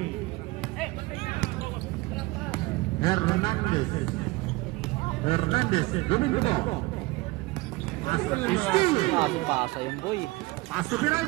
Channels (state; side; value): quieter; left; 22.5 dB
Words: Hernandez, winning the ball. Pasa yung boy. Pass to